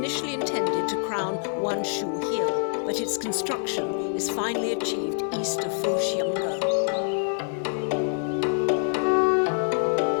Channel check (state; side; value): silent; right; 59 dB below the other